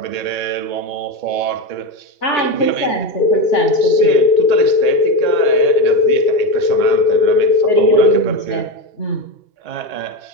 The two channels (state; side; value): late; right; 2.8 ms